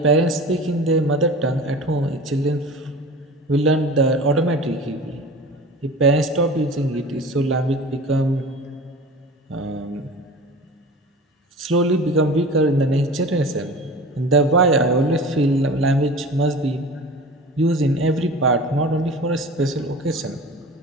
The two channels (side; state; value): both; normal; correlation 0.37